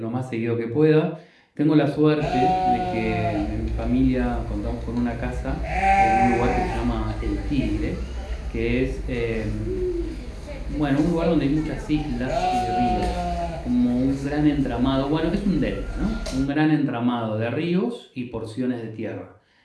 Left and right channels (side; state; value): both; identical; correlation 1.00